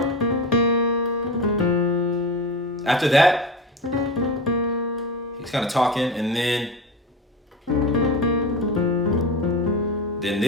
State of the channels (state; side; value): normal; both; correlation 0.25